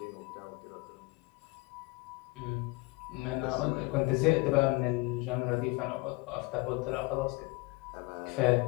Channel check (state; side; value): quieter; right; 24.7 dB